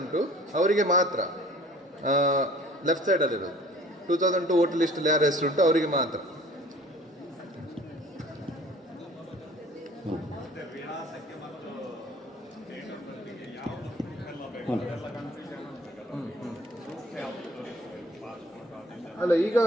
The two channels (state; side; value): normal; both; correlation 0.50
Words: ಅವರಿಗೆ ಮಾತ್ರ ಲೆಫ್ಟ್ ಸೈಡಲ್ಲಿರೋದು. 2002 ವೋಟರ್ ಲಿಸ್ಟಲ್ಲಿ ಯಾರ ಹೆಸರುಂಟು ಅವರಿಗೆ ಮಾತ್ರ. ಅಲ್ಲ, ಈಗ